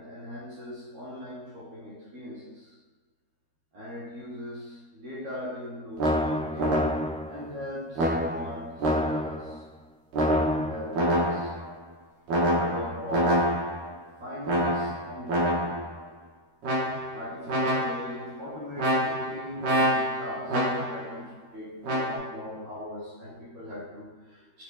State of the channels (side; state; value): left; late; 13 ms